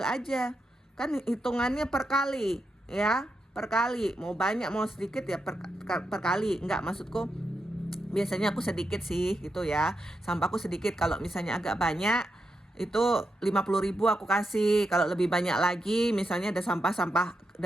aja. Kan hitungannya per kali ya, per kali. Mau banyak mau sedikit ya per kali. Enggak, maksudku biasanya aku sedikit sih gitu ya. Sampahku sedikit, kalau misalnya agak banyak itu 50.000 aku kasih. Kalau lebih banyak lagi, misalnya ada sampah-sampah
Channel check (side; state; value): both; normal; correlation 0.85